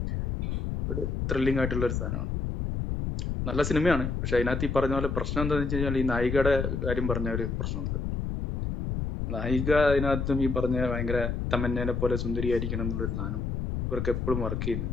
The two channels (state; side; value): noise; left; rumble, 2 dB below the sound